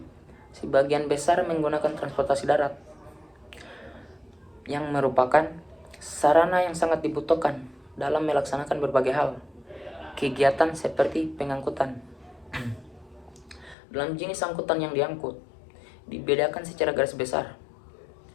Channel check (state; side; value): drops out; right; at 13.8 s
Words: sebagian besar menggunakan transportasi darat, yang merupakan sarana yang sangat dibutuhkan dalam melaksanakan berbagai hal, kegiatan seperti pengangkutan. Dalam jenis angkutan yang diangkut, dibedakan secara garis besar